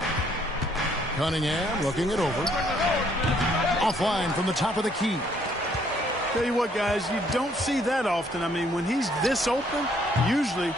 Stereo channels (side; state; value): both; normal; correlation 0.66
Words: Cunningham looking it over. Offline from the top of the key. Tell you what, guys, you don't see that often. I mean, when he's this open, usually